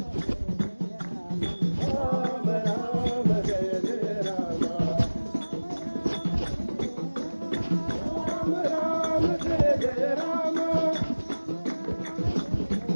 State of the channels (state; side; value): inverted; both; correlation -1.00